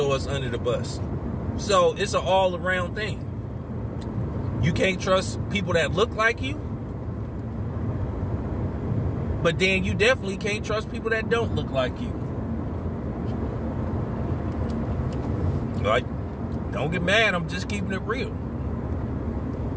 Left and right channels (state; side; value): identical; both; correlation 1.00